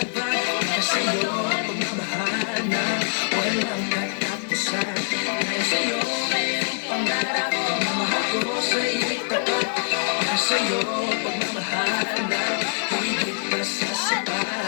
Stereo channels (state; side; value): silent; right; digital silence